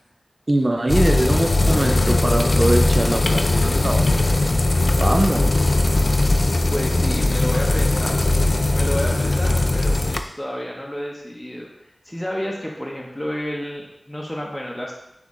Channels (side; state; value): both; normal; correlation 0.98